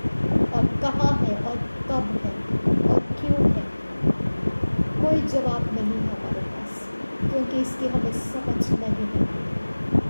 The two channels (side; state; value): both; inverted; correlation -1.00